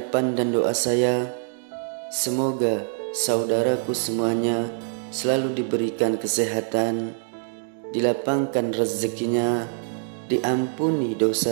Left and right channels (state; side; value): silent; left; digital silence